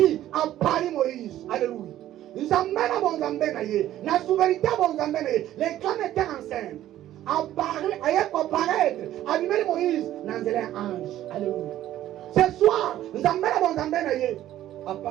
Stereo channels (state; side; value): quieter; left; 13.1 dB